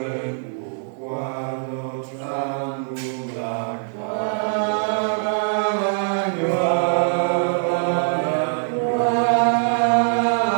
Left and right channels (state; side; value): silent; left; 64 dB below the other